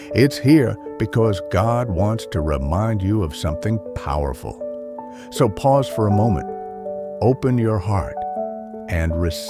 It's here because God wants to remind you of something powerful. So pause for a moment, open your heart, and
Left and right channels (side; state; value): both; identical; correlation 1.00